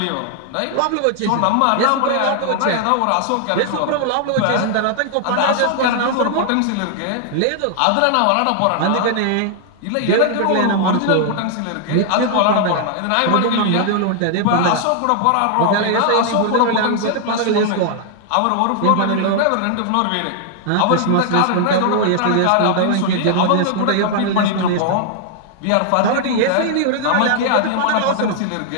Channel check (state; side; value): different; both; correlation 0.00